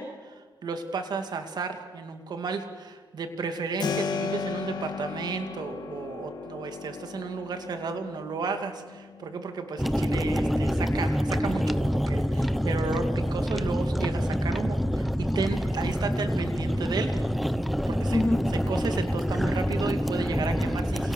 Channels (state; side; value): normal; both; correlation 0.85